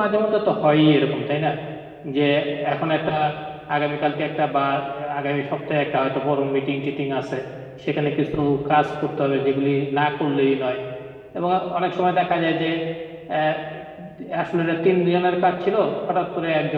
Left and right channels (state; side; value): identical; both; correlation 1.00